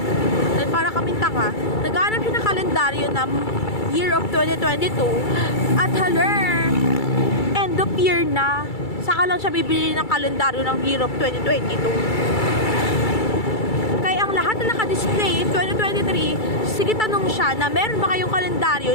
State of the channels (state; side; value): late; right; 2.3 ms